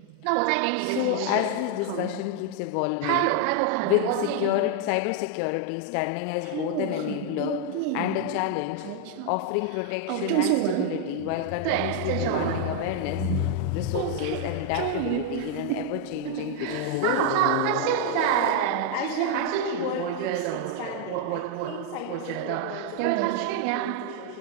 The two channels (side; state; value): both; different; correlation 0.00